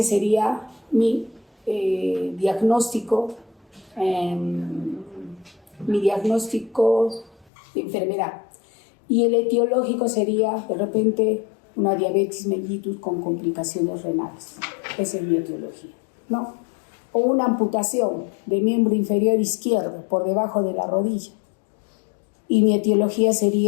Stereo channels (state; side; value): drops out; right; at 7.5 s